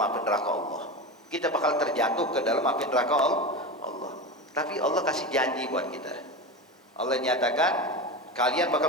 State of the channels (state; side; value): normal; both; correlation 0.23